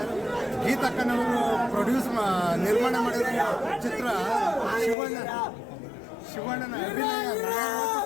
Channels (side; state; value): right; drops out; at 5.0 s